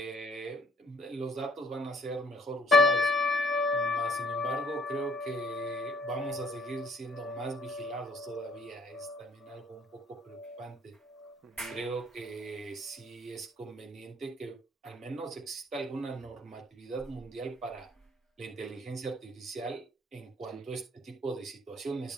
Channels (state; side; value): normal; both; correlation 0.62